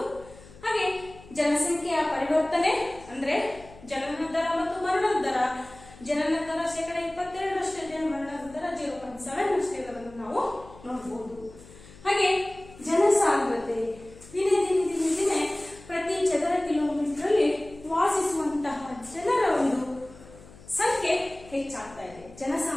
ಹಾಗೆ ಜನಸಂಖ್ಯೆಯ ಪರಿವರ್ತನೆ ಅಂದ್ರೆ ಜನನ ದರ ಮತ್ತು ಮರಣದ ದರ. ಜನನ ದರ 22% ಇದೆ, ಮರಣದ ದರ 0.7 ಇರೋದನ್ನು ನಾವು ನೋಡಬಹುದು. ಹಾಗೆ ಜನಸಾಂದ್ರತೆ ದಿನೇ ದಿನೇ ದಿನೇ ದಿನೇ ಪ್ರತಿ ಚದರ ಕಿಲೋಮೀಟರ್ ಅಲ್ಲಿ ವಾಸಿಸುವಂತಹ ಜನರ ಒಂದು ಸಂಖ್ಯೆ ಹೆಚ್ಚಾಗ್ತಾ ಇದೆ,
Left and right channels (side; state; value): left; noise; hum, 21 dB below the sound